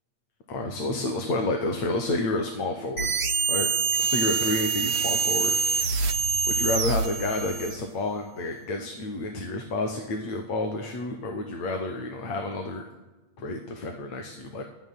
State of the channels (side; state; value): right; late; 8.6 ms